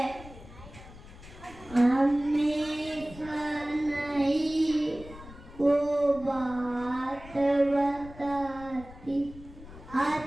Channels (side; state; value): left; noise; rumble, 17 dB below the sound